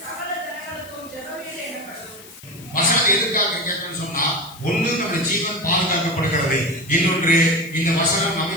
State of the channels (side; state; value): left; noise; hiss, 19 dB below the sound